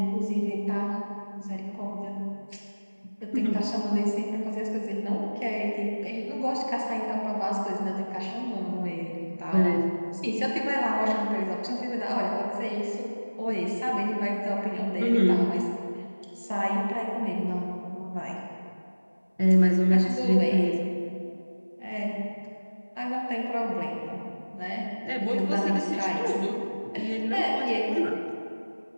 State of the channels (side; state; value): both; inverted; correlation -1.00